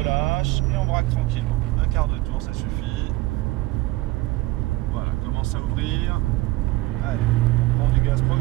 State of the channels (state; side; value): quieter; left; 19.0 dB